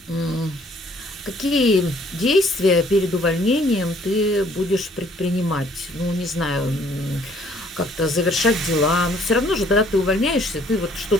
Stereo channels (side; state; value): both; normal; correlation 0.61